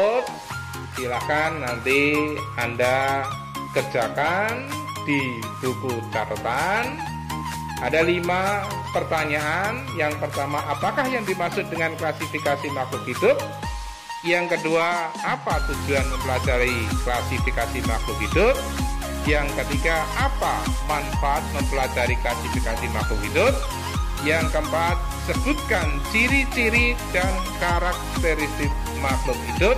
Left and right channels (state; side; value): identical; both; correlation 1.00